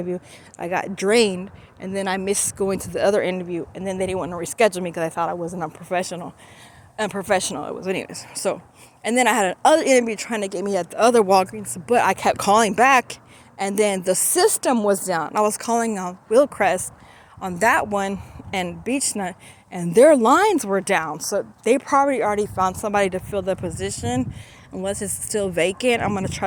I got drained, and then I missed going to the other interview, and then they didn't want to reschedule me because I thought I wasn't unprofessional. Unprofessional it was anyways. So, and then I had another interview trying to get me at the other Walgreens, but I kept calling back, and then the system was down. I was calling on Willcrest on that one and Beechnut, and their lines were down. So they probably already found somebody to fill the position. Unless it's still vacant, I'm gonna try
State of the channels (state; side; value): identical; both; correlation 1.00